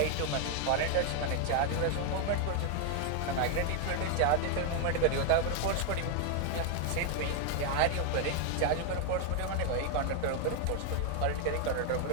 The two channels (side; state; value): both; different; correlation 0.01